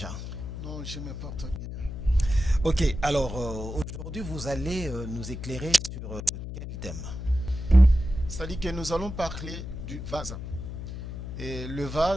Non, je me porte bien. Ok, alors aujourd'hui, vous allez nous éclairer sur quel thème? C'est-à-dire que nous allons parler du vase. Et le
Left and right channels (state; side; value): noise; left; hum, 7 dB below the sound